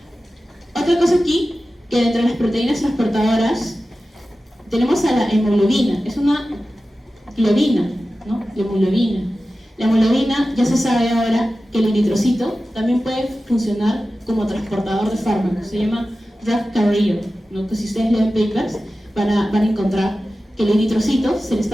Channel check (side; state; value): both; normal; correlation 0.94